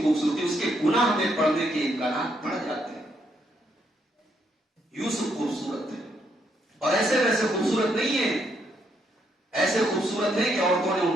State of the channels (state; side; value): normal; both; correlation 0.75